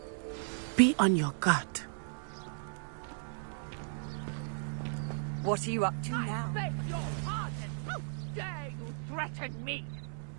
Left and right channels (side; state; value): left; silent; 54 dB below the other